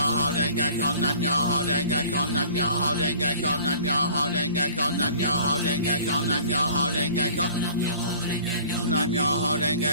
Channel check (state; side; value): inverted; both; correlation -0.48